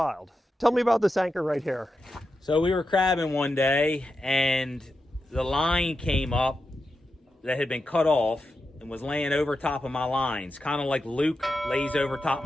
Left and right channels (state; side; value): normal; both; correlation 0.89